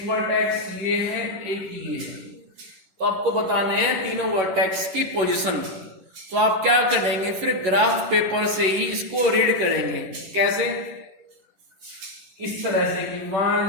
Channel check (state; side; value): late; left; 11 ms